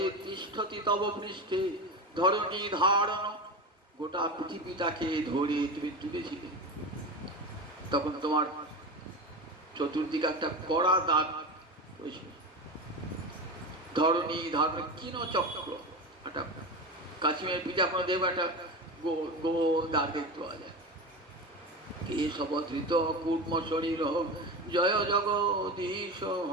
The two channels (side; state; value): both; normal; correlation 0.24